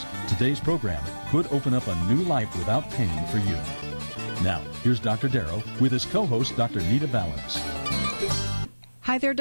Today's program could open up a new life without pain for you. Now, here's Dr. Darrow with his co-host, Dr. Nita Valens. Hi there,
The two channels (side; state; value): both; inverted; correlation -1.00